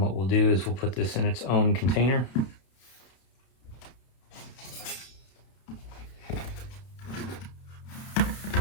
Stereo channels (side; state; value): right; late; 31 ms